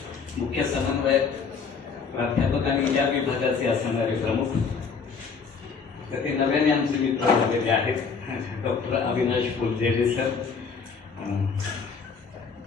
मुख्य समन्वयक प्राध्यापक आणि या विभागाचे असणारे प्रमुख तर ते नव्याने आमचे मित्र झालेले आहेत डॉक्टर अविनाश फुलझेले सर.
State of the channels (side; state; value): right; quieter; 5.5 dB